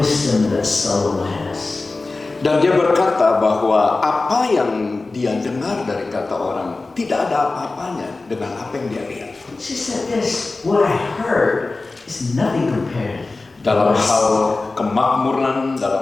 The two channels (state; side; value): quieter; right; 3.5 dB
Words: that Solomon has. Dan dia berkata bahwa apa yang dia dengar dari kata orang tidak ada apa-apanya dengan apa yang dia lihat. She said this, what I heard is nothing compared. Dalam hal kemakmuran,